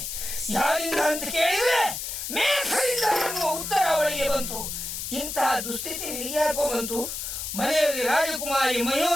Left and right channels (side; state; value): left; noise; hiss, 5 dB below the sound